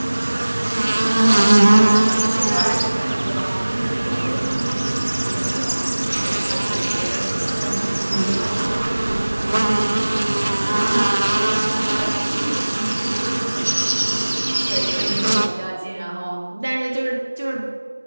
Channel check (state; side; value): inverted; both; correlation -1.00